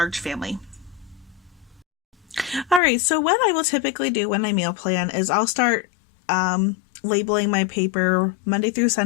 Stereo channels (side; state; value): right; drops out; at 2.8 s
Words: family. All right, so what I will typically do when I meal plan is I'll start labeling my paper Monday through